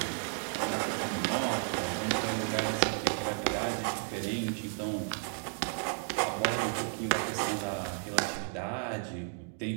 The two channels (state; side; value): silent; left; 56 dB below the other